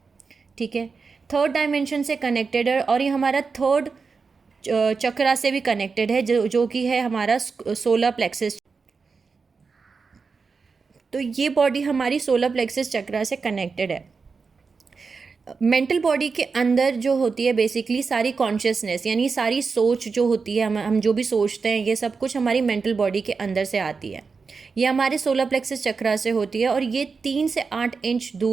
ठीक है। 3rd डायमेंशन से कनेक्टेड है और ये हमारा 3rd चक्रा से भी कनेक्टेड है, जो कि है हमारा सोलर प्लेक्सस। तो ये बॉडी हमारी सोलर प्लेक्सस चक्रा से कनेक्टेड है। मेंटल बॉडी के अंदर जो होती है बेसिकली सारी कॉन्शियसनेस, यानी सारी सोच जो होती है, हम जो भी सोचते हैं, ये सब कुछ हमारी मेंटल बॉडी के अंदर से आती है। ये हमारे सोलर प्लेक्सस चक्रा से होती है और ये 3 से 8 इंच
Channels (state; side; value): quieter; left; 4.9 dB